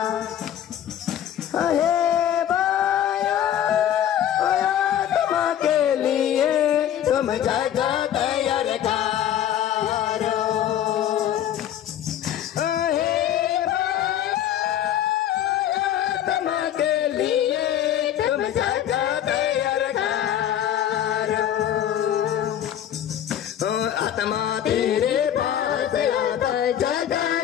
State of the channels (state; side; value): quieter; right; 10.7 dB